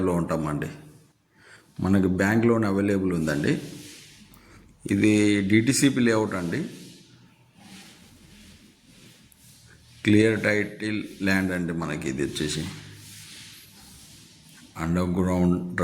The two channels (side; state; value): both; identical; correlation 1.00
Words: ఉంటామండి. మనకి బ్యాంక్ లోన్ అవైలబుల్ ఉందండి. ఇది DTCP లేఅవుట్ అండి. క్లియర్ టైటిల్ ల్యాండ్ అండి. మనకి ఇది వచ్చేసి అండర్ గ్రౌండ్